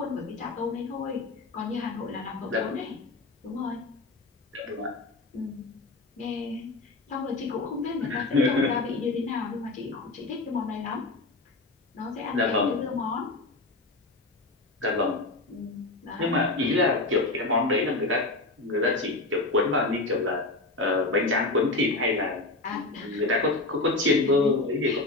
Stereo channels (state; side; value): quieter; right; 3.0 dB